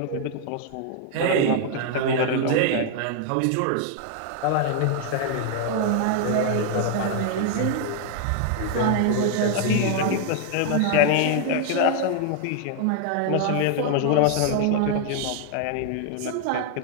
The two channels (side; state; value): both; different; correlation 0.00